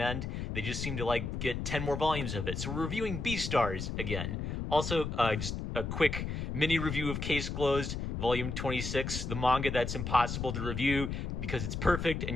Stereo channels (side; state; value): left; noise; rumble, 4 dB below the sound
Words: They just seem to like get 10 more volumes of it. So we're reviewing Beastars again. Also, just a quick mini review of Case Closed, Volume 26, the manga that's impossible to review because it's perfect and